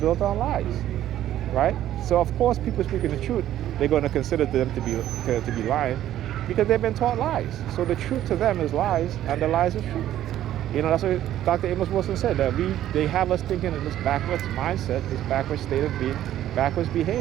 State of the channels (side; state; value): left; quieter; 12.4 dB